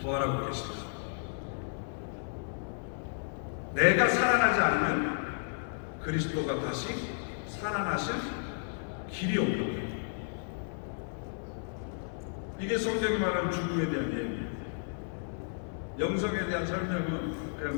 부활하고 계십니다. 내가 살아나지 않으면 그리스도가 다시 살아나실 길이 없는 거예요. 이게 성경이 말하는 죽음에 대한 얘기예요. 영성에 대한 설명은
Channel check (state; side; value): silent; right; 56 dB below the other